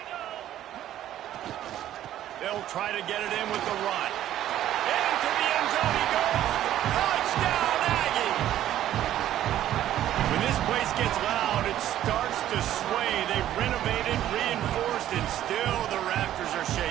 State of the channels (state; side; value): quieter; left; 12.3 dB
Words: They'll try to get it in with the run. Into the end zone he goes. Touchdown, Aggie! When this place gets loud, it starts to sway. They've renovated, reinforced, and still the rafters are